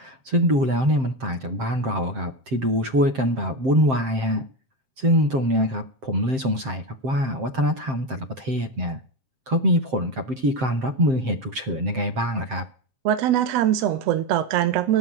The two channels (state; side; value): late; left; 7.6 ms